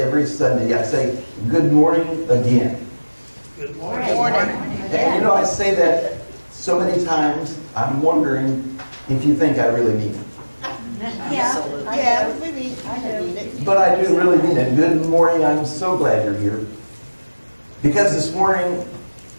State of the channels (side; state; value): both; inverted; correlation -1.00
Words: Sunday. I say, good morning again. Good Morning. And I say that so many times, I'm wondering if you think I really mean it. Yeah, we mean it. But I do really mean it. Good morning. I'm so glad you're here. Because this morning,